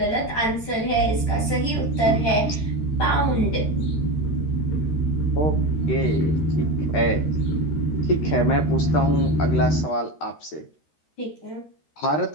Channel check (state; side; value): late; right; 13 ms